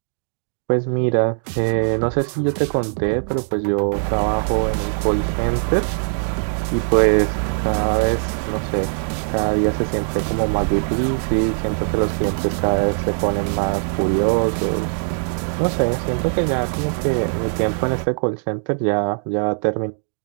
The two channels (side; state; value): left; silent; digital silence